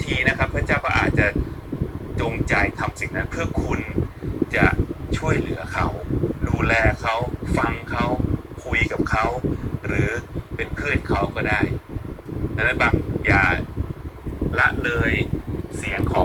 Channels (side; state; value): both; identical; correlation 1.00